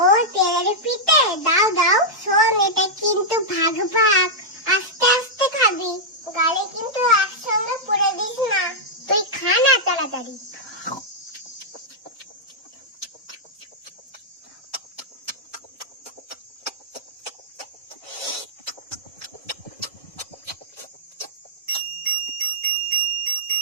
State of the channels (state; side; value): normal; both; correlation -0.07